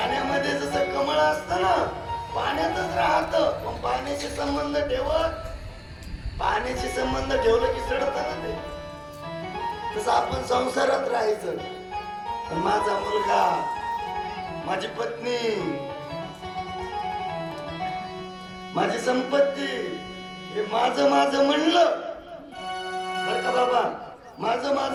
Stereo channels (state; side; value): identical; both; correlation 1.00